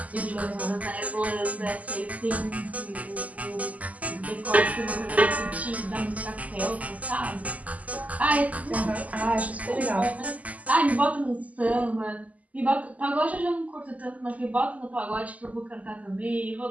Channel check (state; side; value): late; left; 0.074 ms